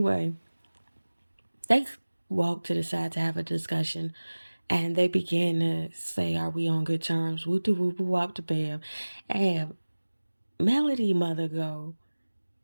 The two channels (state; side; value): inverted; both; correlation -1.00